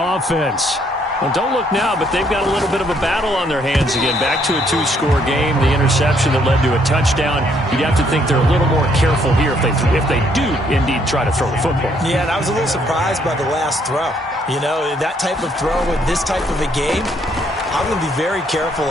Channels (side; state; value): both; normal; correlation 0.69